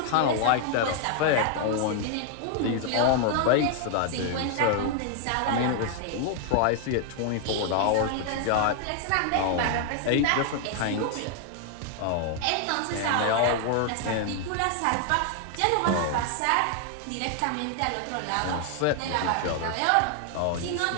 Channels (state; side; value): different; both; correlation 0.00